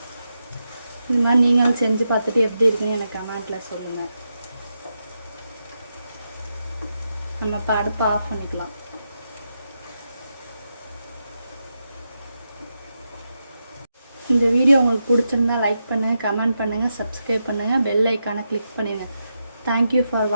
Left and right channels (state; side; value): inverted; both; correlation -0.86